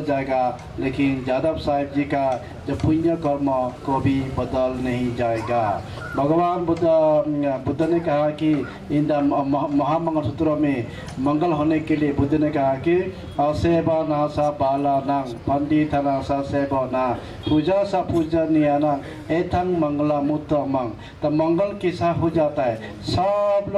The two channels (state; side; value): identical; both; correlation 1.00